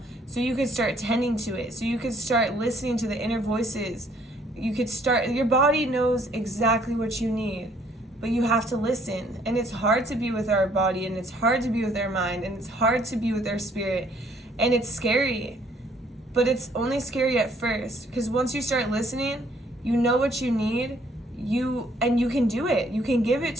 so you could start tending to it, so you could start listening to the inner voices. You could start, your body knows exactly what you need, but you have to listen. And it's hard to be with our body, and it's hard to be with our mind, and it's hard to be with our spirit, and it's scary. But it's only scary at first, because once you start listening, you know what you need. You can do it. You can give it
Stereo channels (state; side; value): normal; both; correlation 0.63